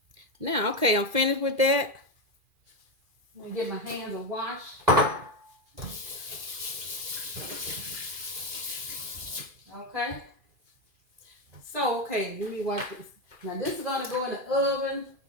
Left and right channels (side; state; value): left; late; 2.4 ms